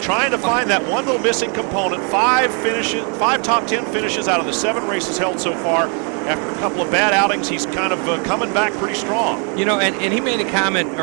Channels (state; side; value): quieter; left; 38.0 dB